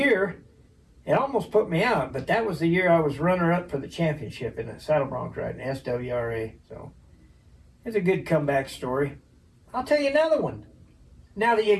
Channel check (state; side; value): identical; both; correlation 1.00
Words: it almost put me out, but that was the year I was runner-up for the championship in the saddle bronc riding, SWRA. So it's a good comeback story. I'll tell you another one. Now that you